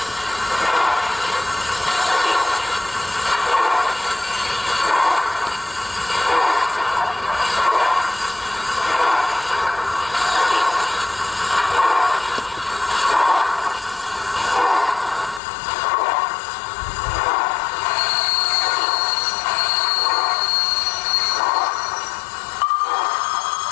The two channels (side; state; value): right; drops out; at 15.4 s